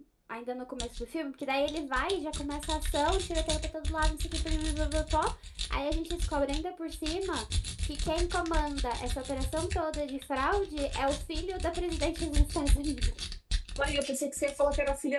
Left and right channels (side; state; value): both; identical; correlation 1.00